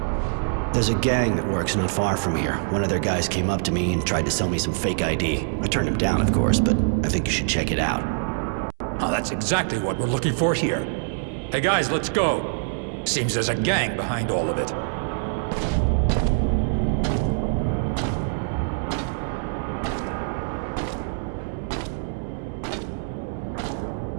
There's a gang that works not far from here. One of their guys came up to me and tried to sell me some fake ID. I turned him down, of course, but I think you should check it out. Oh, that's exactly what we're looking for here. Hey guys, let's go. Seems there's a gang behind all of it.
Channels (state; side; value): silent; left; 62 dB below the other